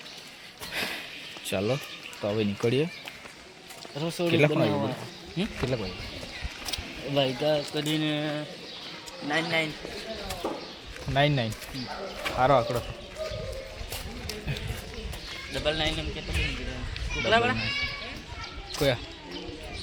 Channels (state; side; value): identical; both; correlation 1.00